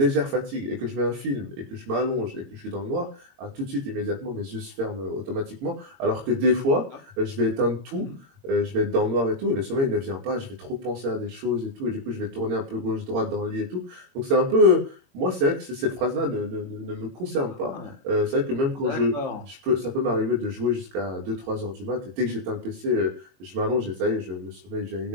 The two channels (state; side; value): late; left; 22 ms